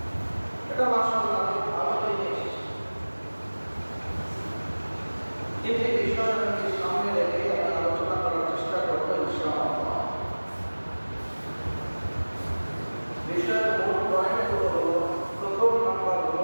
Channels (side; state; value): both; inverted; correlation -1.00